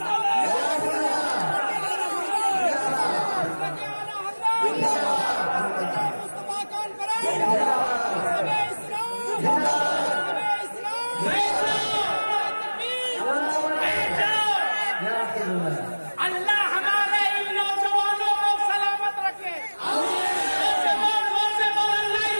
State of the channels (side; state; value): both; inverted; correlation -1.00